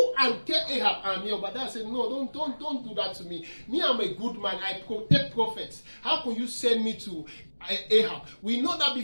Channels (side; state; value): both; inverted; correlation -1.00